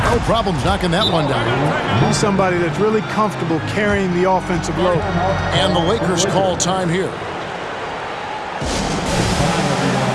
No problems knocking that one down. He's somebody that's really comfortable carrying the offensive load. And the Lakers call time here.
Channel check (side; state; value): both; identical; correlation 1.00